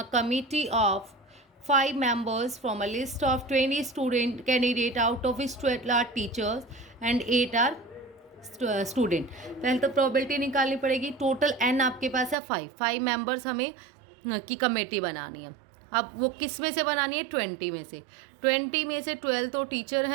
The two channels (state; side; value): drops out; left; at 12.4 s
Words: committee of 5 members from a list of 20 student candidate, out of which 12 are teachers and 8 are student. पहले तो प्रोबेबिलिटी निकालनी पड़ेगी, टोटल n आपके पास है 5 members हमें की committee बनानी है। अब वो किस में से बनानी है 20 में से, 20 में से 12 तो टीचर